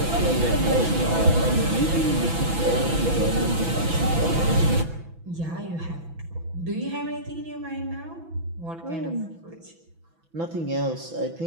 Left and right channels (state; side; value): late; left; 6.0 ms